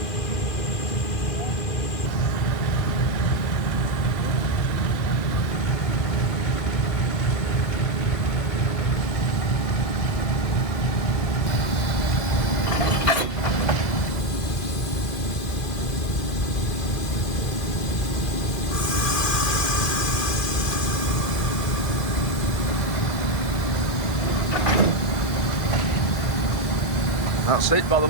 That's it by the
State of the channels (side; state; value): right; late; 2.6 ms